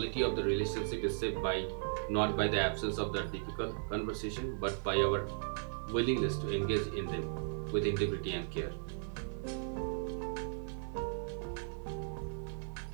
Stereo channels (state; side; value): silent; left; 53 dB below the other